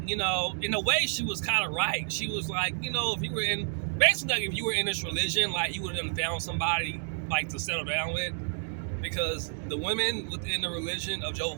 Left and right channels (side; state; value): left; silent; digital silence